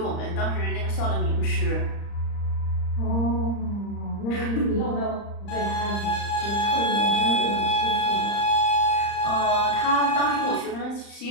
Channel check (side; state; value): right; late; 35 ms